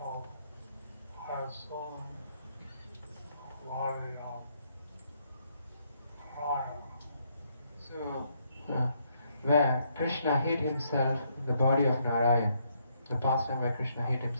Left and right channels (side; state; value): both; inverted; correlation -0.73